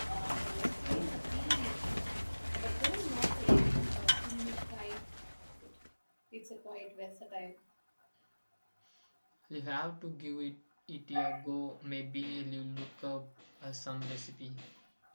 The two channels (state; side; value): inverted; both; correlation -1.00